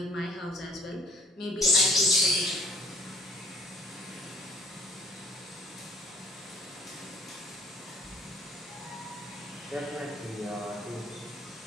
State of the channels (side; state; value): both; normal; correlation 0.57